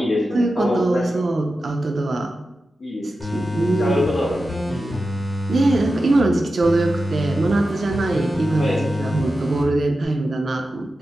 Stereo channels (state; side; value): normal; both; correlation 0.92